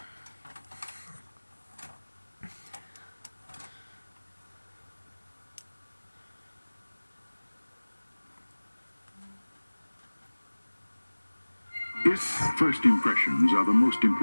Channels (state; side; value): inverted; both; correlation -1.00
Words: If first impressions are the most